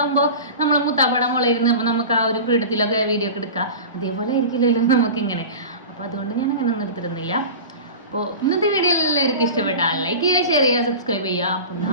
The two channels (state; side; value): inverted; both; correlation -0.32